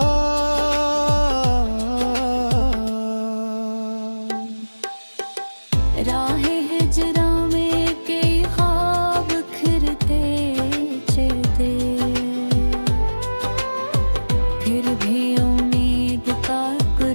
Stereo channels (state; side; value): inverted; both; correlation -1.00